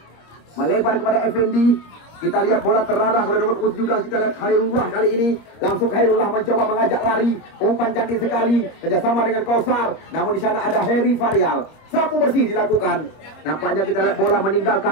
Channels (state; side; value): late; right; 25 ms